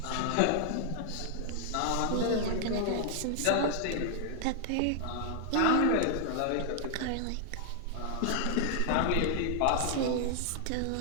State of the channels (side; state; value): both; different; correlation 0.00